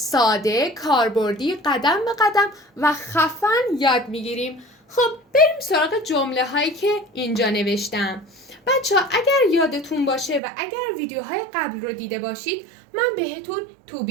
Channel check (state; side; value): drops out; left; at 10.4 s